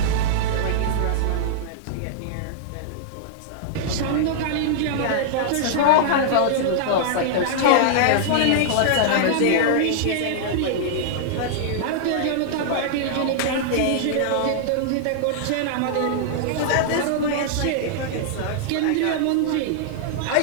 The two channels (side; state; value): both; different; correlation -0.01